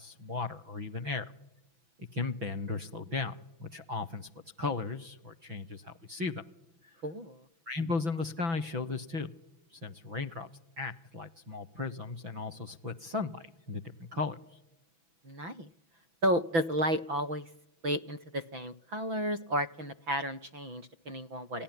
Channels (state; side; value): late; left; 6.0 ms